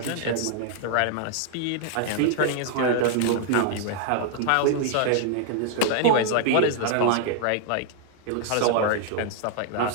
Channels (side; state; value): both; different; correlation 0.00